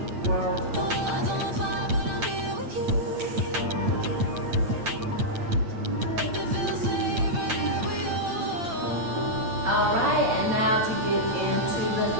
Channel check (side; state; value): left; late; 8.9 ms